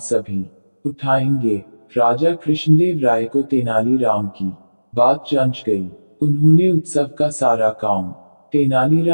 सभी उठाएंगे। राजा कृष्णदेव राय को तेनालीराम की बात जंच गई। उन्होंने उत्सव का सारा काम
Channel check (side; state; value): both; inverted; correlation -1.00